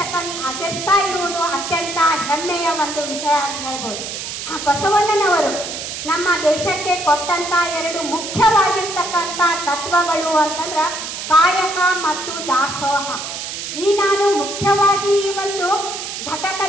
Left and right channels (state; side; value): noise; right; hiss, 7 dB below the sound